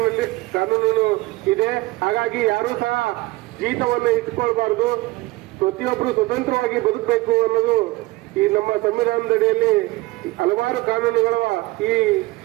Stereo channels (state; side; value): quieter; left; 20.2 dB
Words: ಇದೆ. ಹಾಗಾಗಿ ಯಾರೂ ಸಹ ಜೀತವನ್ನು ಇಟ್ಕೊಳ್ಬಾರ್ದು. ಪ್ರತಿಯೊಬ್ಬರು ಸ್ವತಂತ್ರವಾಗಿ ಬದುಕಬೇಕು ಅನ್ನೋದು ಈ ನಮ್ಮ ಸಂವಿಧಾನದಡಿಯಲ್ಲಿ ಹಲವಾರು ಕಾನೂನುಗಳ ಈ